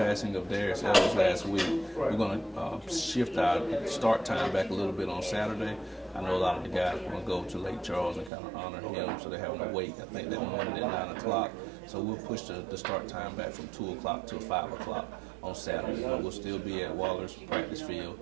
of Darius Evans last week, we're going to shift our start time back a little bit on Saturday. I know a lot of the guys want to go to Lake Charles and kind of honor him, so they're having to wait. I think that morning at 9 o'clock. So we'll push the start time back from 2 o'clock to 5 o'clock on Saturday. But we'll still be at Waller's practice field.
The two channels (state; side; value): drops out; left; at 8.3 s